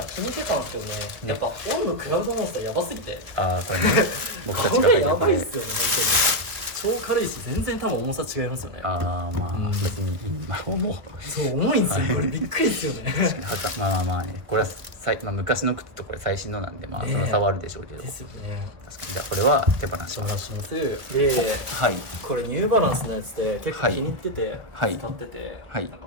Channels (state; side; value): late; left; 1.4 ms